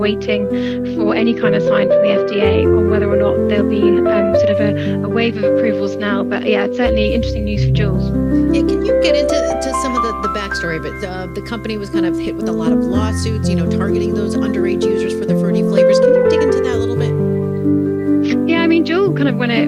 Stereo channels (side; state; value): both; identical; correlation 1.00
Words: for any kind of sign from the FDA on whether or not there'll be sort of a wave of approvals now. But yeah, it's certainly interesting news for Juul. Yeah, can you get into some of the backstory of it? The company was kind of hit with a lot of lawsuits, targeting those underage users for the fruity flavors. Can you dig into that a little bit? Yeah, I mean, Juul kind of when it